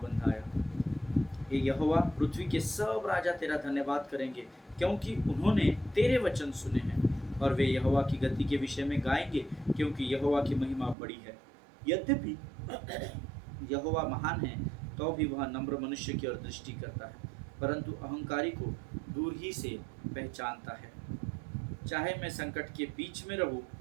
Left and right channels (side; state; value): left; drops out; at 11.0 s